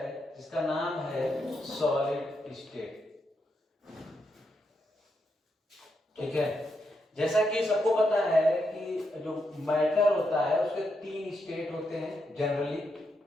जिसका नाम है सॉलिड स्टेट। ठीक है, जैसा कि सबको पता है कि जो मैटर होता है उसके 3 स्टेट होते हैं जनरली।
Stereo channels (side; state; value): both; normal; correlation 0.82